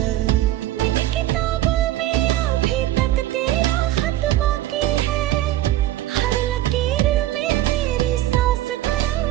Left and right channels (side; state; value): left; quieter; 14.4 dB